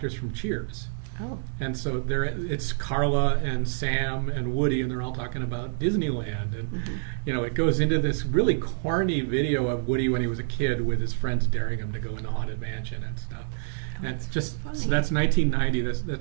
from Cheers. Oh. And so it's Carla and Sam and Woody, and they're all talking about Disneyland. And, it goes into this really corny video of Woody when he was a kid with his friends daring him to go in the Haunted Mansion and stuff. And it's just, funny. so that's 1990.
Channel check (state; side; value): silent; left; digital silence